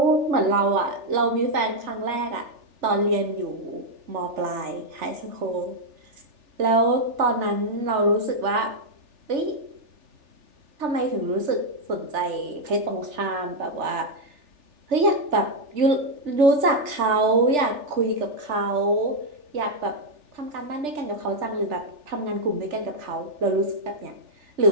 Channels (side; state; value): left; late; 3.4 ms